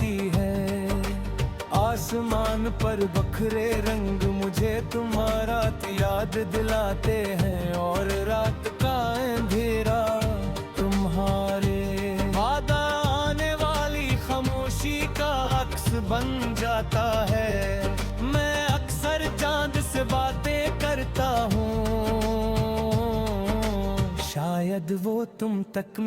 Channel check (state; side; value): identical; both; correlation 1.00